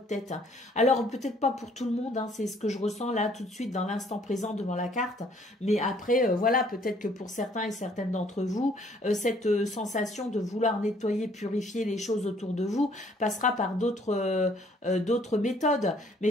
tête. Alors, peut-être pas pour tout le monde, hein, c'est ce que je ressens là tout de suite dans l'instant présent devant la carte, mais après, voilà, peut-être que pour certains et certaines d'entre vous, cette sensation de vouloir nettoyer, purifier les choses autour de vous passera par d'autres méthodes. Mais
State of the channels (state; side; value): normal; both; correlation 0.62